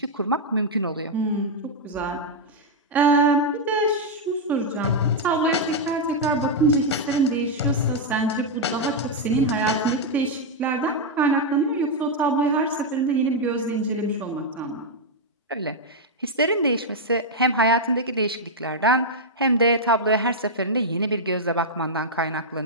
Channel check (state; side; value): normal; both; correlation -0.02